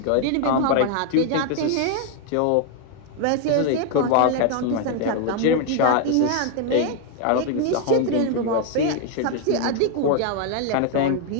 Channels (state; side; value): different; both; correlation 0.01